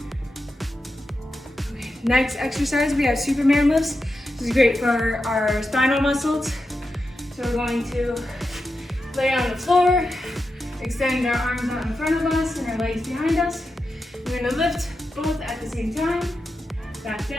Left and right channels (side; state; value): both; normal; correlation 0.89